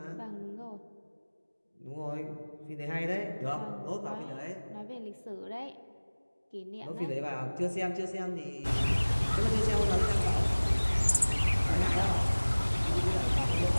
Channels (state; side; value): inverted; both; correlation -1.00